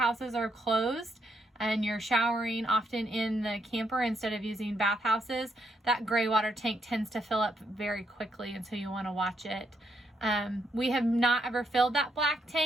are closed and you're showering often in the camper instead of using bathhouses, that gray water tank tends to fill up very quickly, and so you want to watch it. We have not ever filled that black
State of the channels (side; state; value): both; normal; correlation 0.76